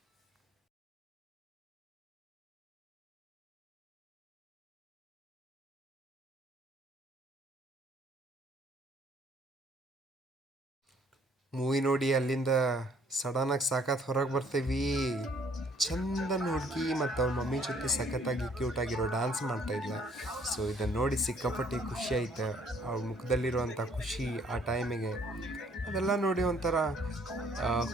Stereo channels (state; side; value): normal; both; correlation 0.62